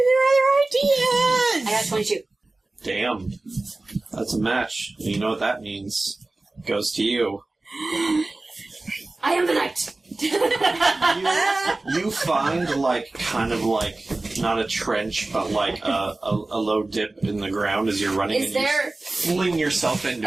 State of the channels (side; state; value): left; quieter; 3.1 dB